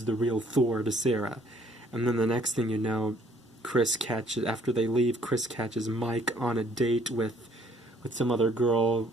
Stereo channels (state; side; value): normal; both; correlation 0.62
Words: the real Thor to Sarah. And then the next thing you know, after they leave, Chris catches Mike on a date with some other girl.